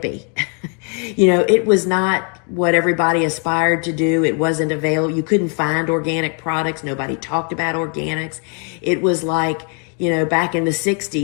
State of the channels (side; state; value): right; quieter; 38.2 dB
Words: It was not what everybody aspired to do. It wasn't available. You couldn't find organic products. Nobody talked about organics. It was like, back in the